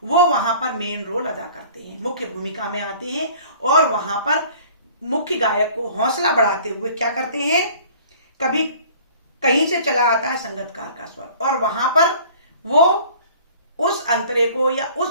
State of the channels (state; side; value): inverted; both; correlation -0.49